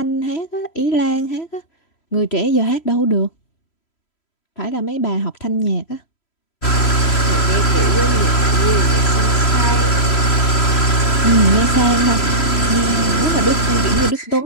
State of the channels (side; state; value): right; late; 3.0 ms